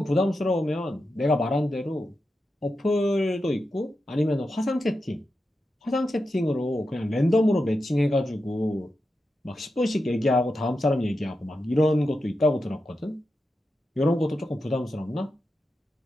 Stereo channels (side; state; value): both; normal; correlation 0.89